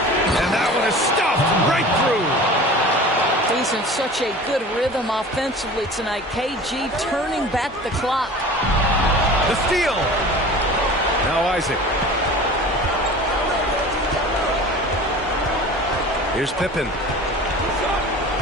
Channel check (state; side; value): normal; both; correlation 0.39